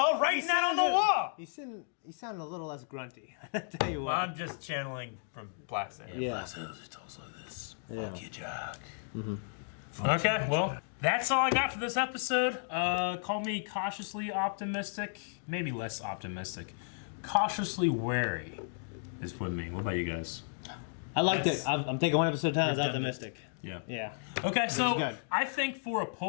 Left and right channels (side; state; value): right; silent; digital silence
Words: writing that on the wall. He sounded a little less grunty. I tell you Well, what. I'm just channeling from Black Sand. Yeah. Black Sails, it talks like this. Yeah. Fuck you, Jack. Okay, well, that's all I got for this episode. Call me cautiously optimistic, maybe less optimistic. Cautiously wary is what I mean. What about you guys? I liked it. I'm taking one episode at a time. I was optimistic. Yeah. Yeah. Okay, so good. I think for a